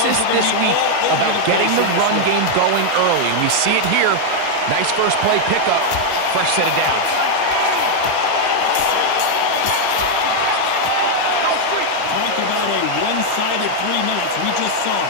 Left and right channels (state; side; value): different; both; correlation 0.00